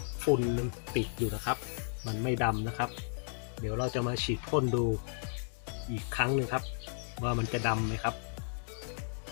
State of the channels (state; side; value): silent; right; 55 dB below the other